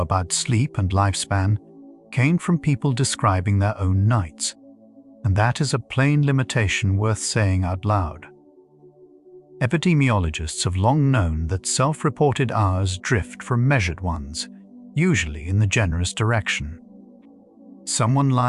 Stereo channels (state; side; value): identical; both; correlation 1.00